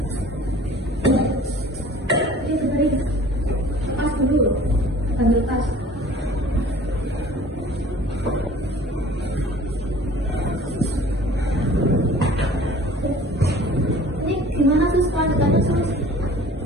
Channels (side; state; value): both; normal; correlation 0.48